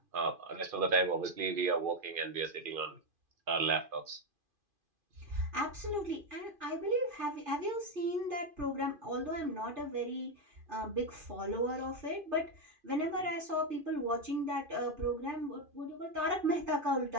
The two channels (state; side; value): late; left; 2.5 ms